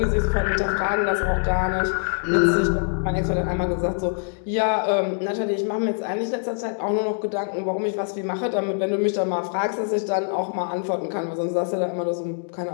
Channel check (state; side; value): silent; right; digital silence